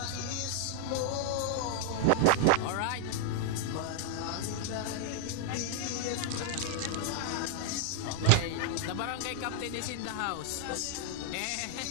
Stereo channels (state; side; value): different; both; correlation 0.00